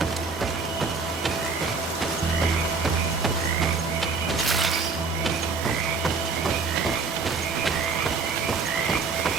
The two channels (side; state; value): left; quieter; 4.6 dB